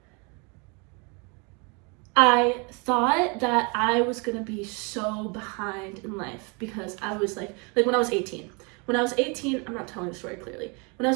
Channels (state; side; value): quieter; left; 32.4 dB